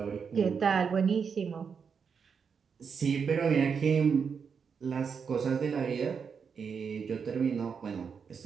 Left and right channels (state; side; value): quieter; left; 6.2 dB